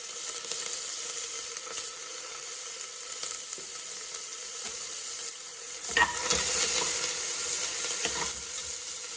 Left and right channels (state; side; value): identical; both; correlation 1.00